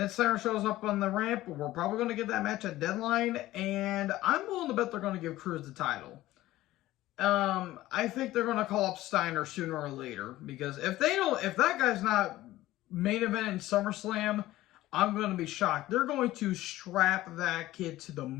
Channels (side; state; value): right; quieter; 16.1 dB